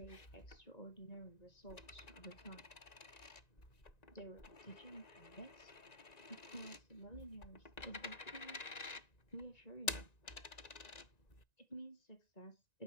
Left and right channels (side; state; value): right; late; 1.9 ms